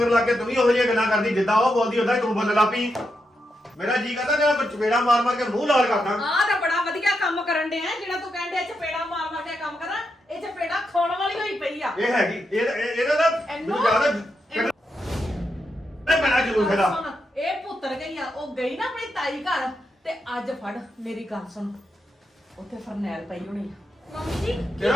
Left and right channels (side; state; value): both; normal; correlation 0.84